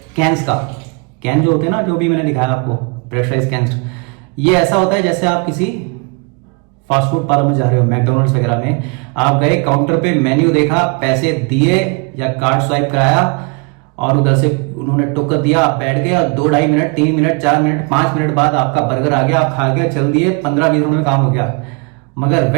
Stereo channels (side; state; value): left; quieter; 32.5 dB